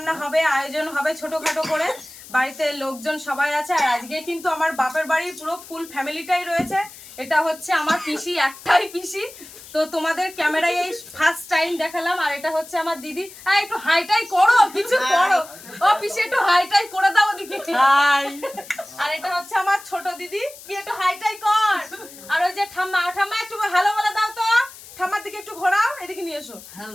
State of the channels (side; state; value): left; noise; hiss, 18 dB below the sound